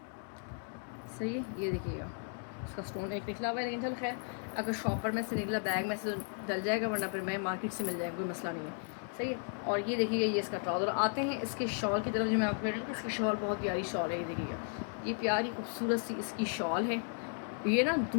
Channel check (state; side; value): silent; right; 54 dB below the other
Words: सही है, ये देखिएगा इसका स्टोन एक निकला हुआ है, लेकिन चल खैर अगर शॉपर में से निकला बैग में से डल जाएगा, वरना फिर मैं मार्केट से मिल जाएगा, कोई मसला नहीं है। सही है। और ये देखिएगा ये इसका ट्राउज़र। आते हैं इसके शॉल की तरफ, जो मैं आपको कह रही हूँ इसकी शॉल बहुत प्यारी शॉल है। ये देखिएगा ये प्यारी खूबसूरत सी इसकी शॉल है। ये ना